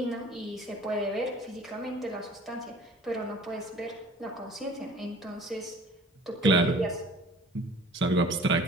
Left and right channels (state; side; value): normal; both; correlation 0.48